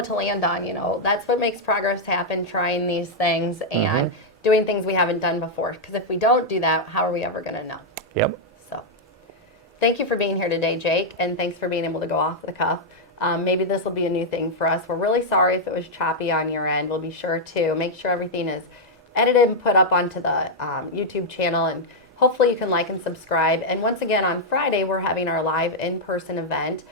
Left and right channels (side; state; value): both; normal; correlation -0.03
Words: to land on. That's what makes progress happen. Trying these things and doing things we haven't done before. Because if we don't do that, how are we ever going to know? Yep. So, thank you for being here today, Jake, and thanks for being able to go off the cuff. Maybe this will be a new thing for us. We're really sorry if it was choppy on your end. We'll be sure to make sure everything is edited and put up onto the YouTube channel, and hopefully you can like and subscribe. And once again, on Friday, we're having our live in-person event